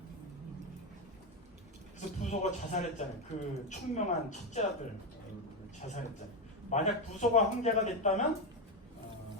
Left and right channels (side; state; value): both; normal; correlation 0.09